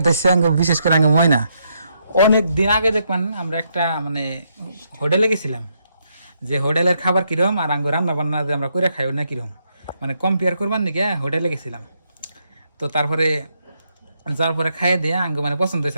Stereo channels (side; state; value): both; inverted; correlation -0.77